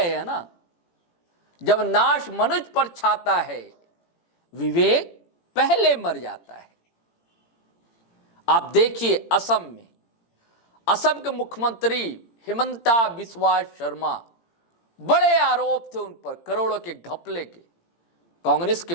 हैं ना, जब नाश मनुज पर छाता है विवेक पहले मर जाता है। आप देखिए असम के मुख्यमंत्री हिमंता बिस्वा शर्मा, बड़े आरोप थे उन पर, करोड़ों के घपले के। कांग्रेस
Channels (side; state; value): right; late; 17 ms